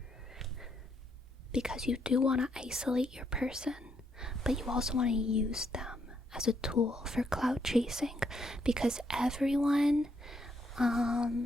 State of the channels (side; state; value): both; normal; correlation 0.75